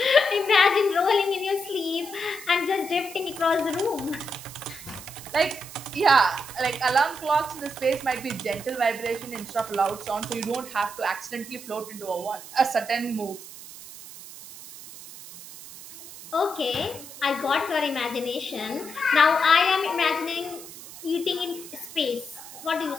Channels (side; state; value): right; noise; hiss, 15 dB below the sound